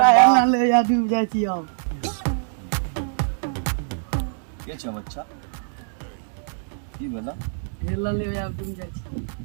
ना ले या डूब जाय छी आओ के छ बच्चा की बोला हेला ले या डूब जाय छी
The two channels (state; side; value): silent; left; digital silence